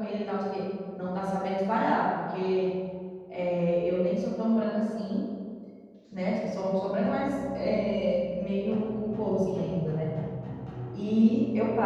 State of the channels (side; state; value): both; identical; correlation 1.00